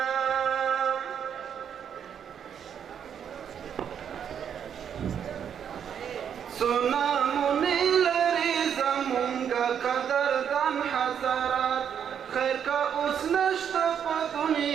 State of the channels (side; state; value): left; quieter; 8.3 dB